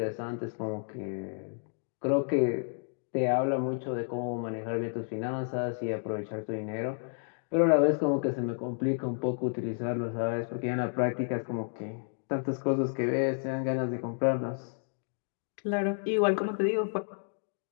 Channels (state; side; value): silent; right; digital silence